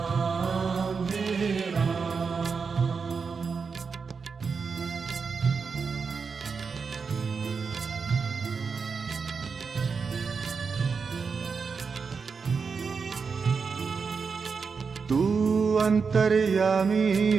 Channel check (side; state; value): left; quieter; 5.3 dB